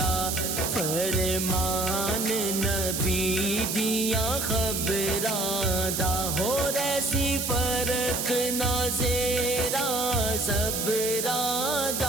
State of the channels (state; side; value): noise; right; hiss, 2 dB below the sound